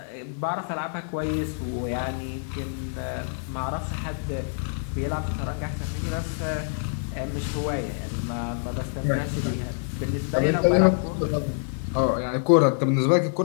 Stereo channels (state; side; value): silent; right; digital silence